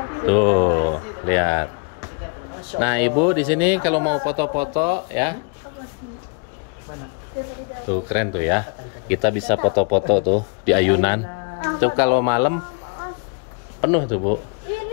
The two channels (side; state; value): right; quieter; 35.9 dB